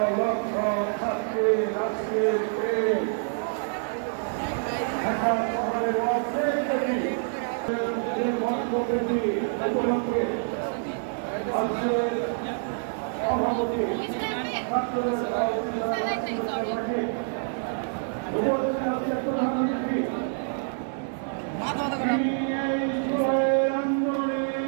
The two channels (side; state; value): left; silent; digital silence